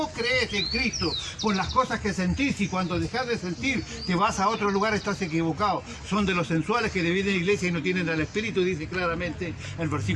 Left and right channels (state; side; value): identical; both; correlation 1.00